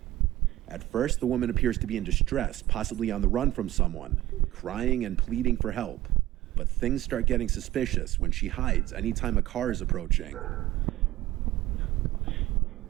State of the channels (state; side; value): quieter; left; 15.5 dB